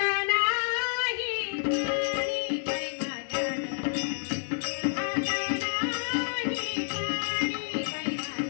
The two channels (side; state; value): right; silent; 57 dB below the other